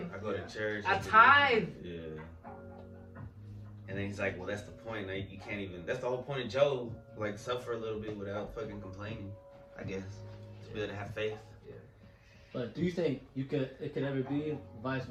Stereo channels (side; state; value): both; identical; correlation 1.00